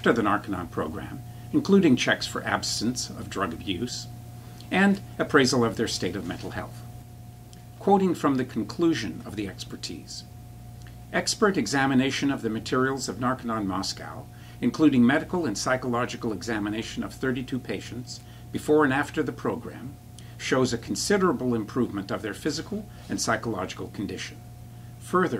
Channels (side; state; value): both; identical; correlation 1.00